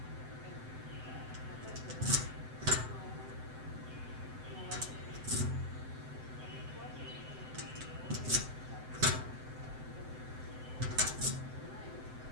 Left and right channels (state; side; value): late; left; 7.8 ms